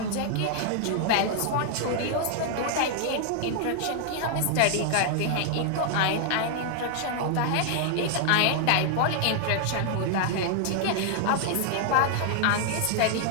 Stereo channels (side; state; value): both; different; correlation 0.00